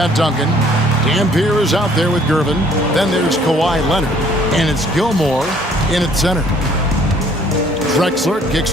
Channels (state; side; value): normal; both; correlation 0.59